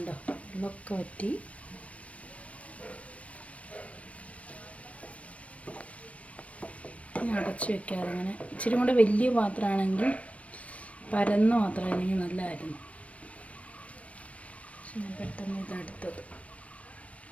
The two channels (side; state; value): right; late; 0.064 ms